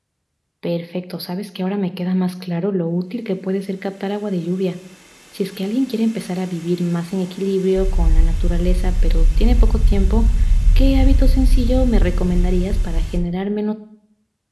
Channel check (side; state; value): both; identical; correlation 1.00